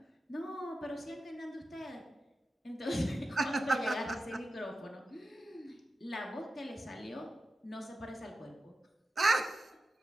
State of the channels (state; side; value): normal; both; correlation 0.92